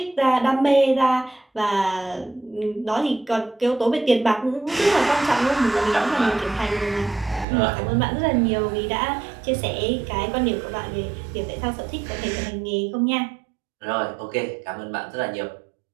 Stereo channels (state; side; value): drops out; left; at 7.5 s